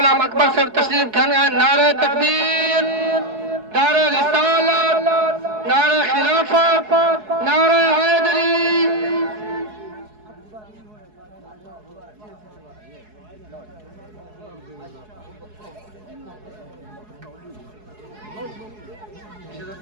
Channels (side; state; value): left; late; 4.7 ms